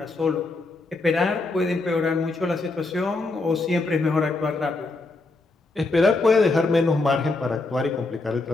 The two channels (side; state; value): right; quieter; 3.4 dB